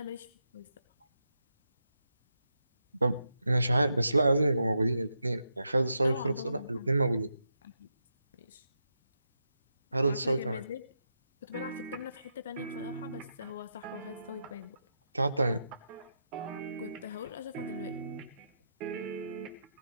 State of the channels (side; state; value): both; inverted; correlation -0.84